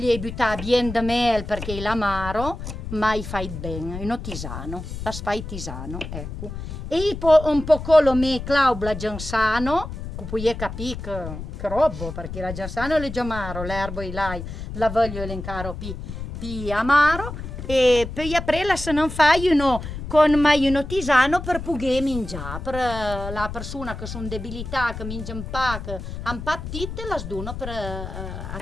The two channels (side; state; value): left; noise; rumble, 8 dB below the sound